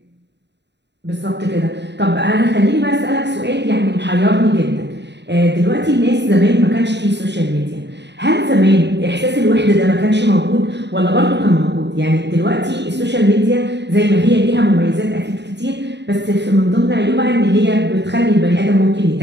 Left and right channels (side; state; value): left; late; 0.50 ms